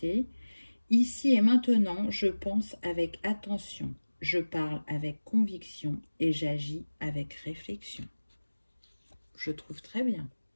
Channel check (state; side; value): inverted; both; correlation -1.00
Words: Ici et maintenant, je pense avec attention. Je parle avec conviction et j'agis avec réflexion. Je trouve très bien.